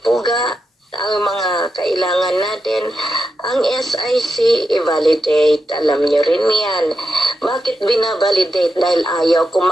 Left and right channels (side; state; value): both; normal; correlation 0.87